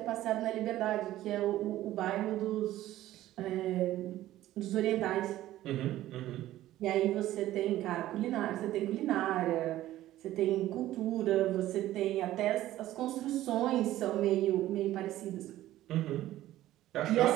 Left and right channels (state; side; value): quieter; left; 14.5 dB